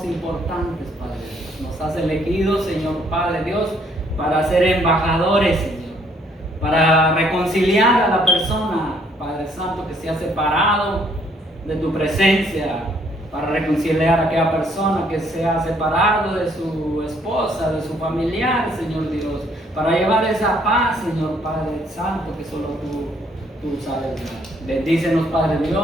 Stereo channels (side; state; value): both; normal; correlation 0.66